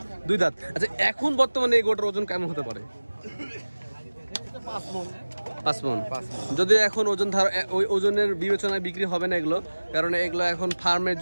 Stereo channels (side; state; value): both; inverted; correlation -1.00